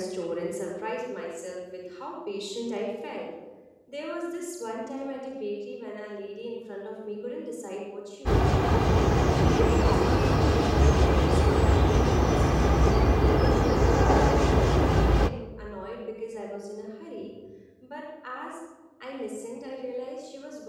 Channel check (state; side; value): identical; both; correlation 1.00